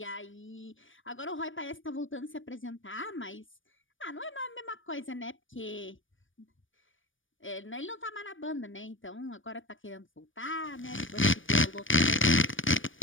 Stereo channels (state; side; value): late; right; 0.57 ms